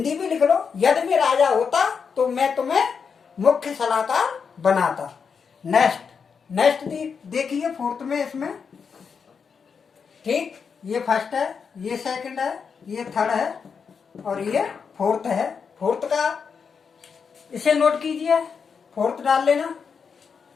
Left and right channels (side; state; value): right; quieter; 6.0 dB